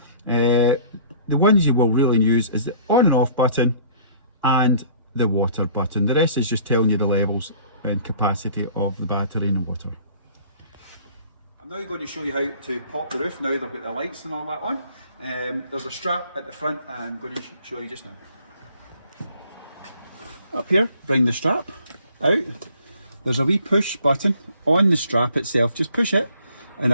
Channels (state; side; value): inverted; both; correlation -0.53